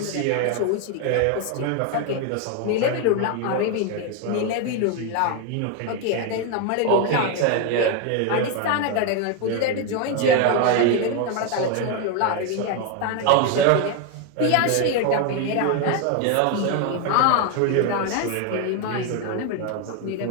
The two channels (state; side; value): different; both; correlation 0.01